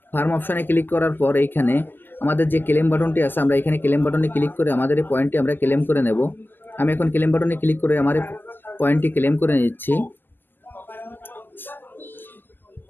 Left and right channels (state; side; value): late; right; 0.098 ms